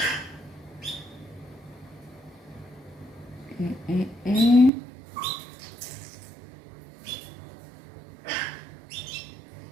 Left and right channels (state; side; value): drops out; left; at 4.7 s